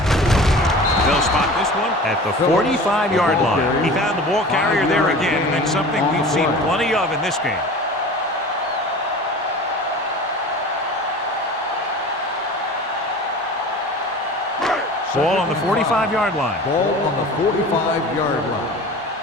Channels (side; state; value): both; normal; correlation 0.38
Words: They'll spot this one at the 45-yard line. He found the ball carrier there again, and that's something we've seen plenty of in this game. Ball on the 45-yard line. Ball on the 45-yard line.